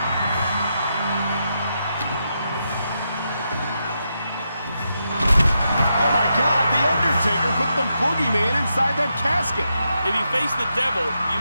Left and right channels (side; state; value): both; inverted; correlation -0.84